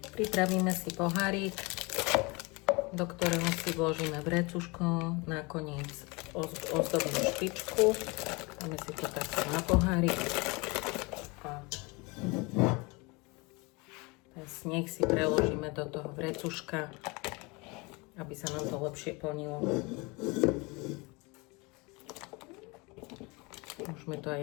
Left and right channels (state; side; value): quieter; right; 26.9 dB